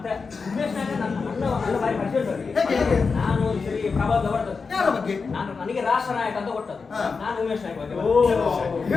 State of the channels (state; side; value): quieter; right; 4.8 dB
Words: ಉಮೇಶ್ ನಾಯಕ ನನ್ನ ಬಾರಿ ಪರಿಚಯ. ಹೇಗೆ? ನಾನು ಈ ಸರಿ ಪ್ರಭಾವ ಹೊರಟದ್ದು. ಯಾರ ಬಗ್ಗೆ? ನನಗೆ ರಾಷ್ಟ್ರ ನಾಯಕ ಅಂತ ಕೊಟ್ಟದ್ದು. ಹಾ. ನಾನು ಉಮೇಶ್ ನಾಯಕ ಬಗ್ಗೆ.